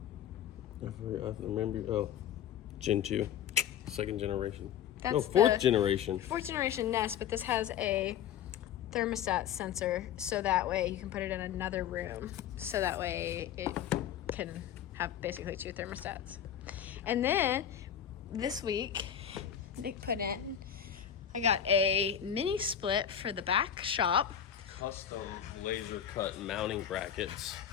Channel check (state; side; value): quieter; right; 9.4 dB